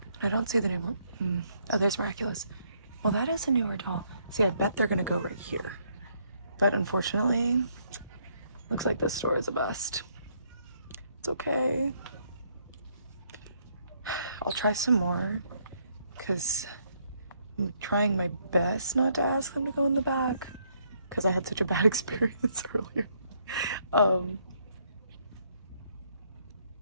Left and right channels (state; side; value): inverted; both; correlation -0.70